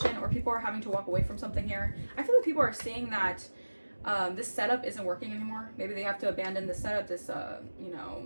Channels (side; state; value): both; inverted; correlation -1.00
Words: or people are having to walk away from something here. I feel like people are seeing that this setup isn't working anymore. Maybe they have to abandon the setup, this, you